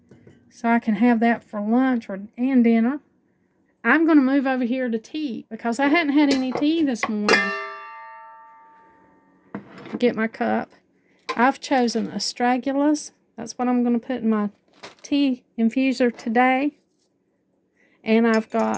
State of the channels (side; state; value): both; identical; correlation 1.00